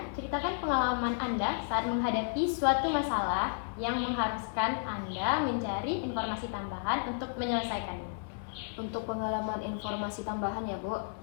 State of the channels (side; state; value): right; silent; 56 dB below the other